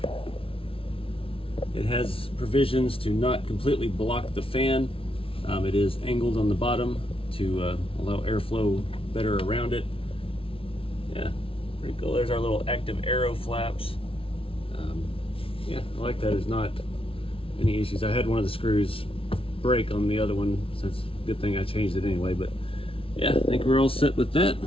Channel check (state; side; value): late; right; 0.26 ms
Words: It has provisions to not completely block the fan. It is angled on the bottom to allow airflow better around it. Yeah, pretty cool. There's our little active arrow flaps. Yeah, I like that. There's not any issues. I had one of the screws break on the other one, so it's a good thing I changed it anyway. But yeah, I think we're all set with that.